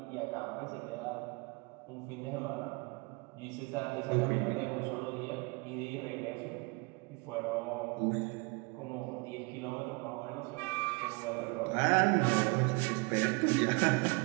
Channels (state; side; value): quieter; left; 29.3 dB